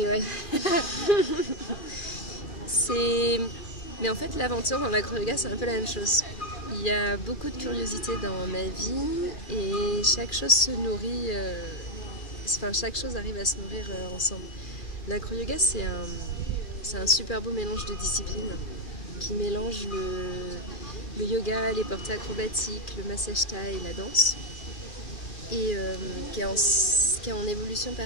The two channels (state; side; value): late; right; 2.4 ms